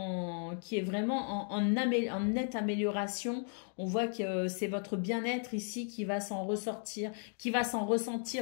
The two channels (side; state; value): right; silent; 54 dB below the other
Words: vraiment en nette amélioration. On voit que c'est votre bien-être ici qui va s'en ressortir, qui va s'en